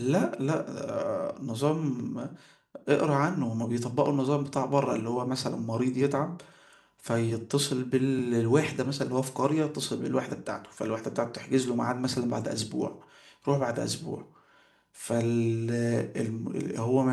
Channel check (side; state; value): both; identical; correlation 1.00